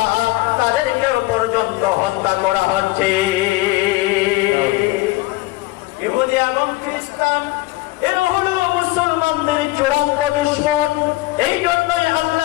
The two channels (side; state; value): right; quieter; 20.2 dB